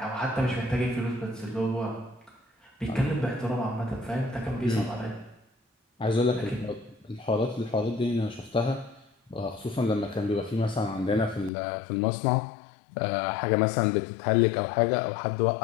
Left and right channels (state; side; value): drops out; right; at 11.5 s